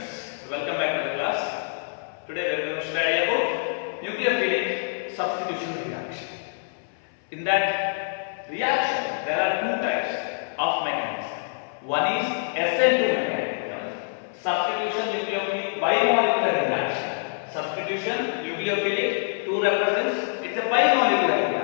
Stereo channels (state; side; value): silent; right; 61 dB below the other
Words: welcome back to the class. Today we are going to study about nucleophilic substitution reaction. In that reaction, there are two types of mechanism. One is SN2 mechanism, substitution nucleophilic bimolecular reaction. Substitution nucleophilic 2 represents it's a bimolecular